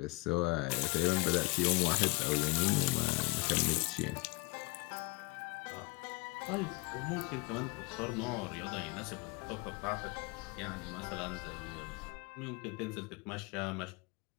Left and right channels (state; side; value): quieter; right; 26.1 dB